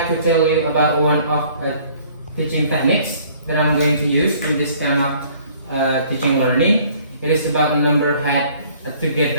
to tell you about one of teaching techniques that I'm going to use in this kind of teaching learning. It is about the number head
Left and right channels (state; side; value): inverted; both; correlation -0.57